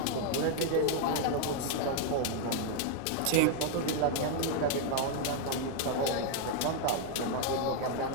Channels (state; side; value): different; both; correlation 0.00